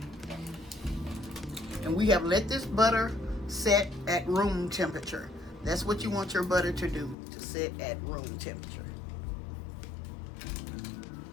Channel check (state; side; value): drops out; right; at 7.2 s